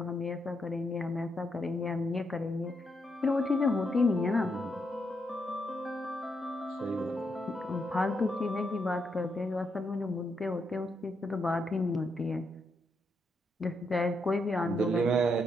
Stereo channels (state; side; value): normal; both; correlation 0.80